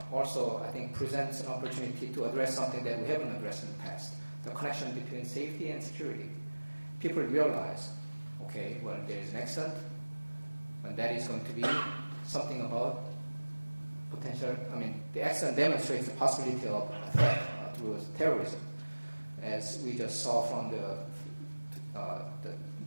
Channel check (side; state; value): both; inverted; correlation -1.00